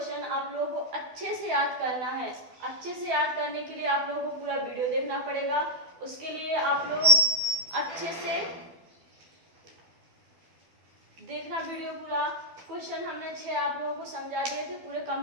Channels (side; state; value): left; late; 12 ms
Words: आप लोगों को अच्छे से याद करना है। अच्छे से याद करने के लिए आप लोगों को पूरा वीडियो देखना पड़ेगा। उसके लिए आप लोग अच्छे से देखना वीडियो पूरा। क्वेश्चन हमने 6 आप लोगों को समझा दिए थे, पूरे